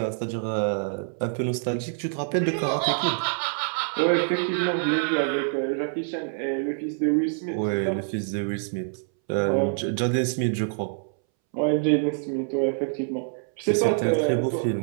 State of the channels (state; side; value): silent; left; 61 dB below the other